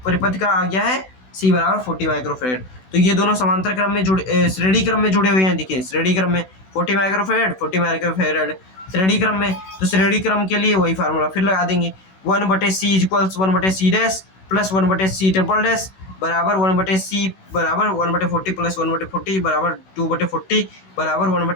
का आ गया है C बराबर 40 माइक्रोफैरेड। तो ये दोनों समांतर क्रम में जुड़े, श्रेणी क्रम में जुड़े हुए हैं, देखिए श्रेणी क्रम में 40 माइक्रोफैरेड श्रेणी क्रम में, तो श्रेणी क्रम के लिए वही फार्मूला फिर लगा देंगे, 1/c equals 1/c dash plus 1/c triple dash बराबर 1/c बराबर 1/40 प्लस 1/40 बराबर 2/40 बराबर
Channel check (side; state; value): right; late; 16 ms